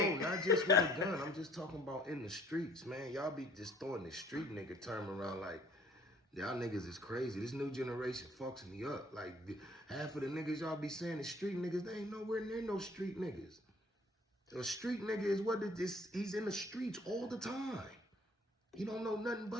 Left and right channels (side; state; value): both; normal; correlation 0.57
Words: No, not just with a gun. I'm just talking about in the streets, man. Y'all be just throwing the street nigga term around like, y'all niggas is crazy. This new generation fucks me up. Like, half of the niggas y'all be saying is street niggas, they ain't nowhere near no street niggas. A street nigga is what it is. He's in the streets all the time. He don't know nothing